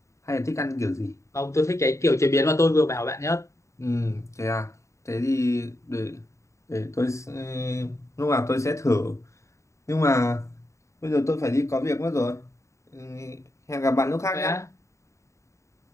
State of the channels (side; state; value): right; late; 0.14 ms